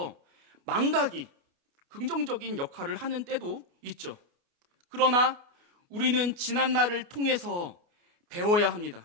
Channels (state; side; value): late; left; 29 ms